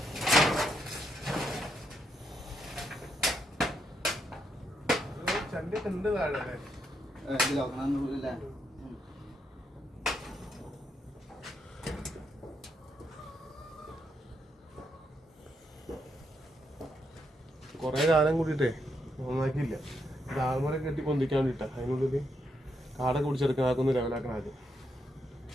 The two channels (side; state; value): both; normal; correlation 0.79